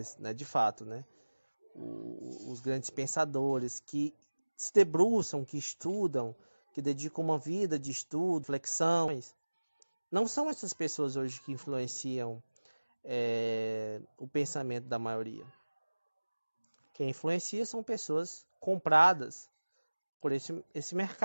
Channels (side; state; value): both; inverted; correlation -1.00